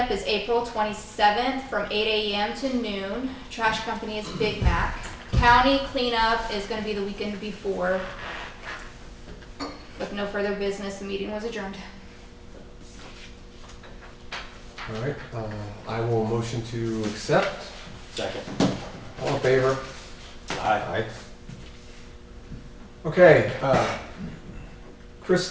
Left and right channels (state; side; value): identical; both; correlation 1.00